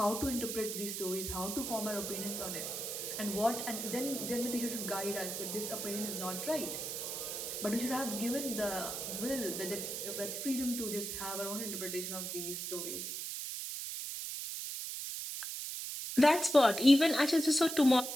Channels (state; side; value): noise; right; hiss, 5 dB below the sound